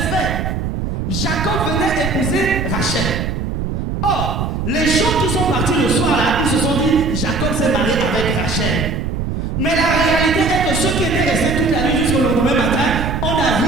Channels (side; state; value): right; noise; rumble, 3 dB below the sound